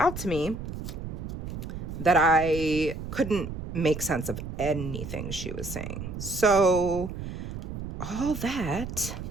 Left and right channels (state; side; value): noise; right; rumble, 7 dB below the sound